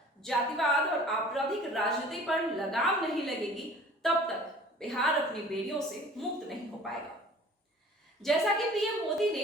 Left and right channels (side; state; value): both; normal; correlation 0.47